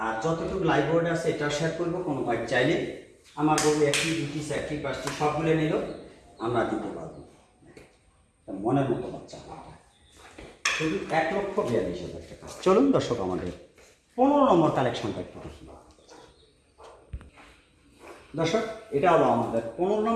আর যতটুকু লাইভ বোর্ড আছে এটা শেয়ার করবো। কোনো ভাই চাইলে আমার বলবো 1টি, 2টি, 4টি, 5টি সবগুলো নিলেও আমরা দিতে পারবো। মনের মতো বাচ্চা, শুধু 1,42,000 টাকা। চলুন দর্শক, আমাদের 15 নম্বর কালেকশনটা একটু দেখি। দর্শক, এটা হলো আমাদের 15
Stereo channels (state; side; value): identical; both; correlation 1.00